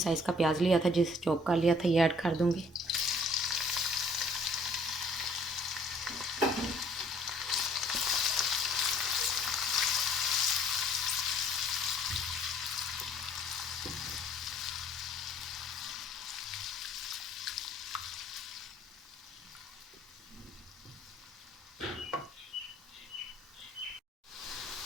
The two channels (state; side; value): normal; both; correlation 0.58